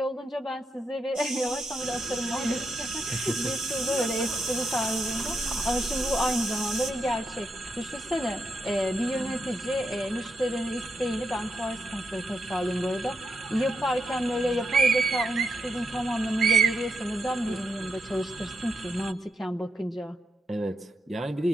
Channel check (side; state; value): both; normal; correlation 0.83